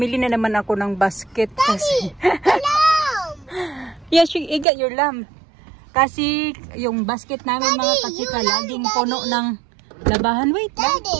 na naman ako ng basket. Daddy, lamb! Yes, you got your lamb. Kasi yung basket namin Daddy, mga kachika, laging puno ng labahan. Wait lang.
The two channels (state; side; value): drops out; left; at 4.7 s